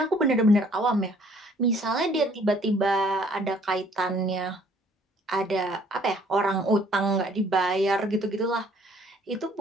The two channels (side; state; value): both; normal; correlation 0.59